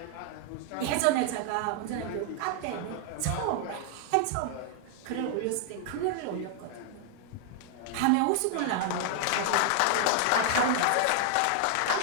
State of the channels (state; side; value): different; both; correlation 0.00